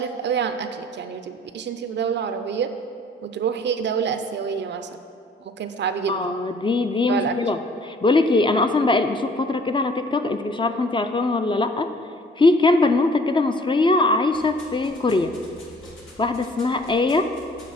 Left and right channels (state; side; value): normal; both; correlation 0.55